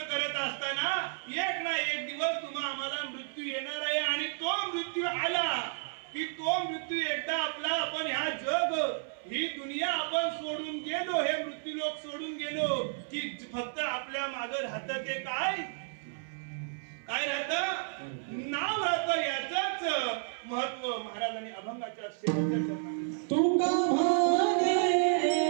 असताना एक ना एक दिवस तुम्हा आम्हाला मृत्यू येणार आहे. आणि तो मृत्यू आला की तो मृत्यू एकदा आपला आपण ह्या जग, ही दुनिया आपण सोडून गेलो, हे मृत्यू लोक सोडून गेलो की फक्त आपल्या मागे राहतं ते काय? काय राहतं? नाव राहतं. याचंच महत्व महाराजांनी अभंगाच्या शेवटच्या चरणात तुका भाने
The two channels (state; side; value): silent; left; 57 dB below the other